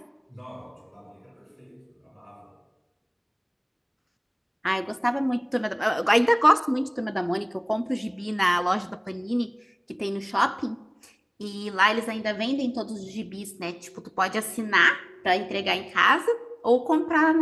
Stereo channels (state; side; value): identical; both; correlation 1.00